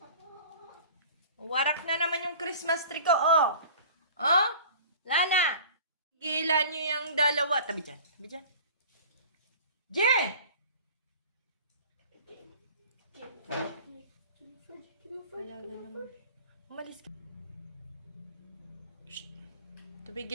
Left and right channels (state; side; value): inverted; both; correlation -0.43